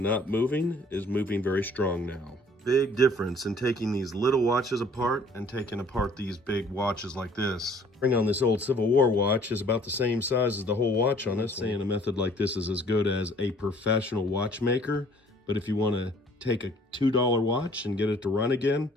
moving is moving very strong now. Big difference in taking these little watches apart and taking apart these big watches like this. Bring on this old Civil War watch is about the same size as the whole watch on this. Saying a method like this is as good as a professional watchmaker, but if you want to take a $2 watch and get it to run again,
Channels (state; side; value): normal; both; correlation 0.56